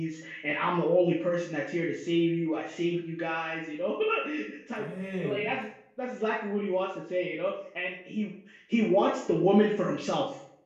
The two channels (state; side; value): identical; both; correlation 1.00